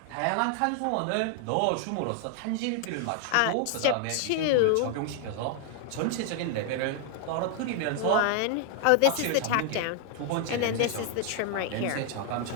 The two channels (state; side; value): different; both; correlation 0.00